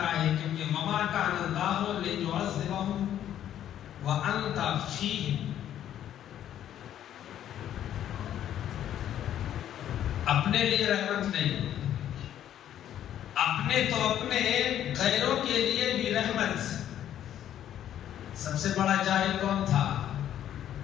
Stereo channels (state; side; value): quieter; right; 11.0 dB